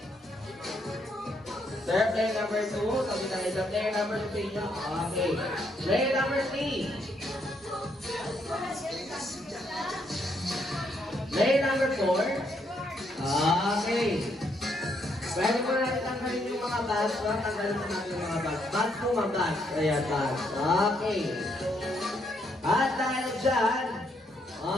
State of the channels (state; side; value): normal; both; correlation 0.74